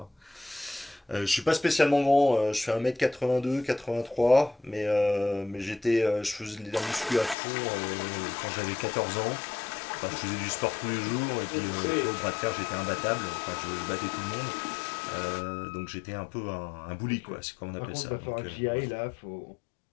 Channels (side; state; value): right; drops out; at 7.4 s